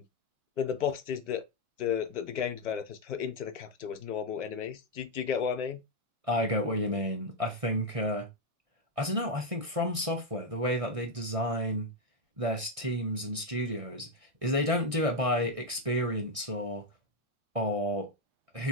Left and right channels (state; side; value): late; left; 1.6 ms